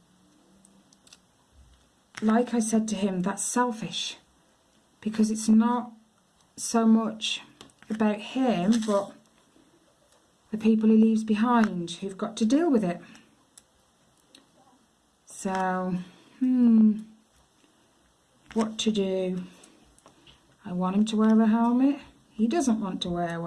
like I said to him, that's selfish, because it's not so much about him, but the people he leaves behind who've got to deal with it. So, what to do? I want him to wear a helmet. He doesn't want to wear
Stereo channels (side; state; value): both; identical; correlation 1.00